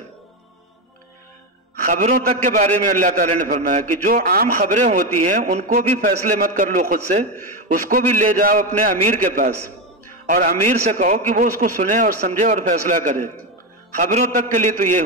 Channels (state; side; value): normal; both; correlation 0.12